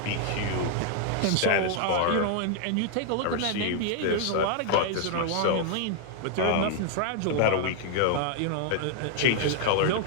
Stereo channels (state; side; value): different; both; correlation 0.00